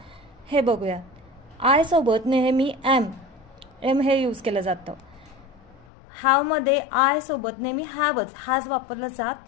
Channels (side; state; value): right; drops out; at 5.9 s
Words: हे बघूया. आय सोबत नेहमी एम हे यूज केलं जातं. हॅवमध्ये आय सोबत नेहमी हॅवच, हॅज वापरलं